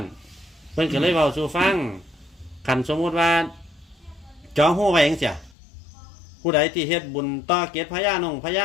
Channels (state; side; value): drops out; right; at 5.6 s